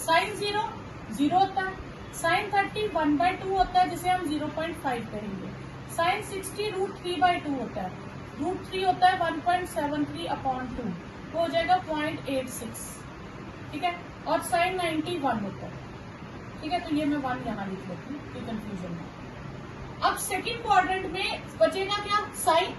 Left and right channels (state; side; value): identical; both; correlation 1.00